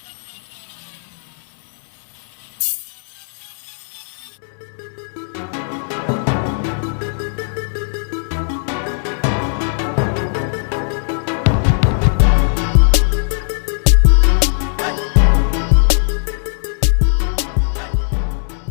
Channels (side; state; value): right; silent; 67 dB below the other